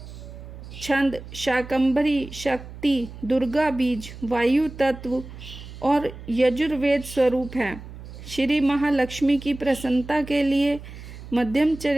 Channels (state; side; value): noise; right; hum, 14 dB below the sound